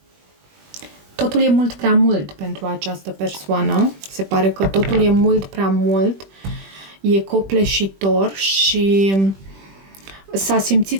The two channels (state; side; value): late; left; 21 ms